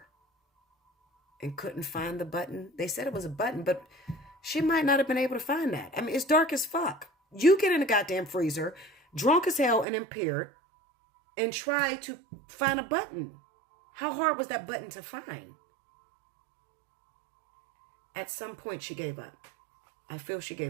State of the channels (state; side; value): drops out; left; at 9.9 s